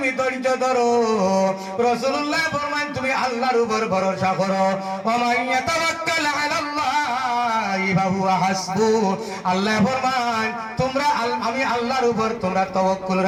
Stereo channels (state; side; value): identical; both; correlation 1.00